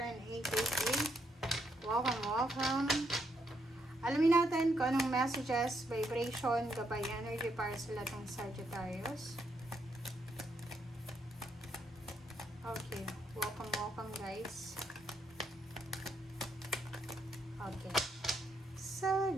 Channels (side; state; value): both; normal; correlation 0.76